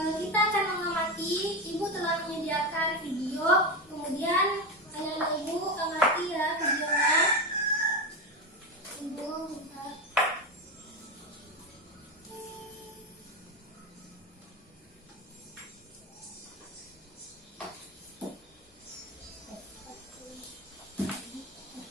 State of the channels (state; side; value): normal; both; correlation 0.17